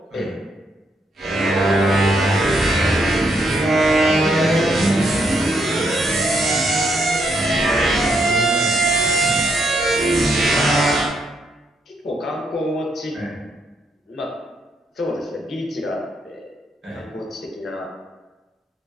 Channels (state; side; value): normal; both; correlation 0.76